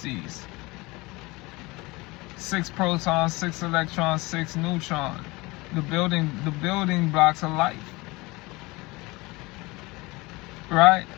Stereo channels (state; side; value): quieter; right; 23.1 dB